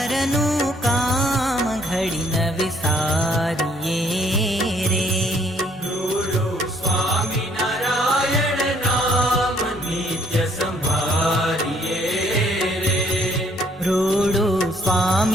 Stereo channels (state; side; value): normal; both; correlation 0.64